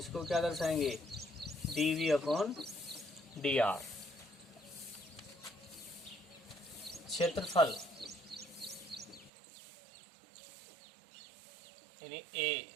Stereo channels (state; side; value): drops out; left; at 9.3 s